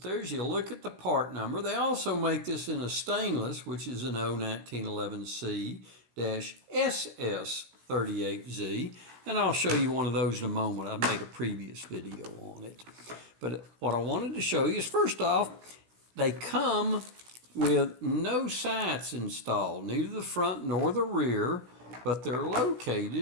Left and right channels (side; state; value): left; late; 16 ms